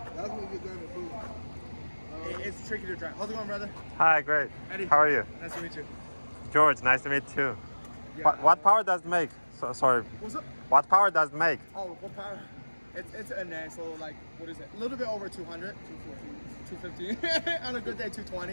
That's what you're gonna do. It's tricky to drive. How's it going, brother? Hi, great. Eddie. How are you? Nice to meet you. George, nice to meet you too. Yeah. What power does it make? Sorry. What's up? What power does it make? Oh, what power? It's a NA, so like, what is it? A little bit over 200. 250. On a good day,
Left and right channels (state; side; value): inverted; both; correlation -1.00